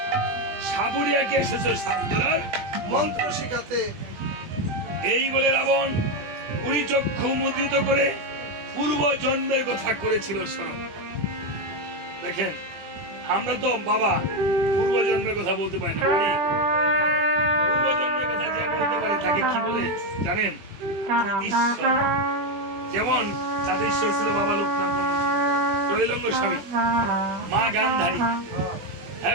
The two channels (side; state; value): left; late; 20 ms